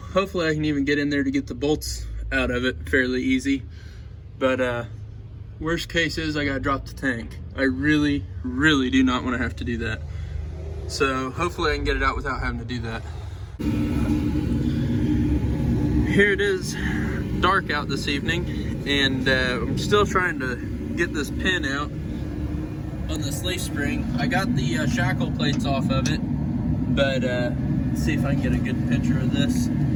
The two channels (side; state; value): both; identical; correlation 1.00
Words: I can even get in there to get the bolts out of it fairly easy. But worst case is I gotta drop the tank. I really, really do not want to have to do that. So hopefully I can get it out without having to do that. Here it is, dark out this evening, and I'm still trying to get this pin out on this leaf spring. I got the shackle plates off of it, but let's see if I can get a good picture of this,